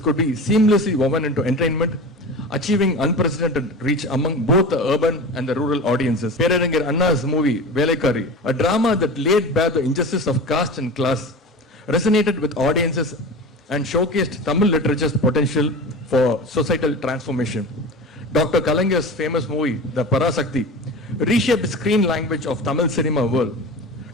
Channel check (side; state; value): both; normal; correlation 0.32